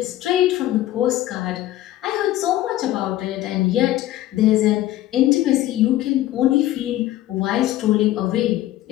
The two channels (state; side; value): quieter; right; 14.5 dB